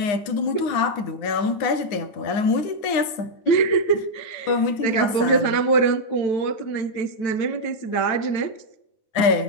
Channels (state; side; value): late; right; 9.7 ms